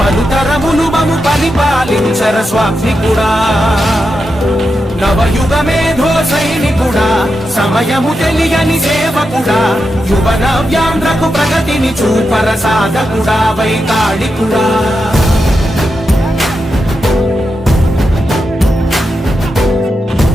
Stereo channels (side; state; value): both; normal; correlation 0.87